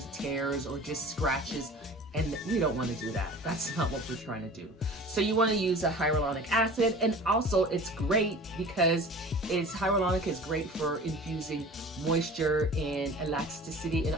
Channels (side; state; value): both; normal; correlation 0.41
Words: tears or just scratches, and we don't want to do that. That's not what we're trying to do. So you want to use a hyaluronic acid, and also it's great because hyaluronic is great for infusing moisture and elasticity and